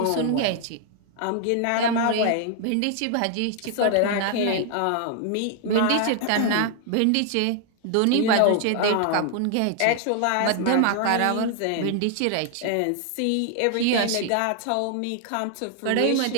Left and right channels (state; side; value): different; both; correlation 0.00